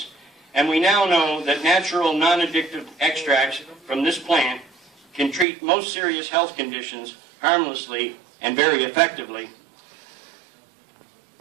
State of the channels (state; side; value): drops out; left; at 5.5 s